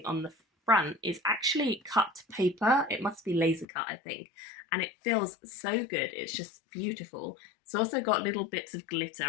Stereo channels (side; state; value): right; drops out; at 3.7 s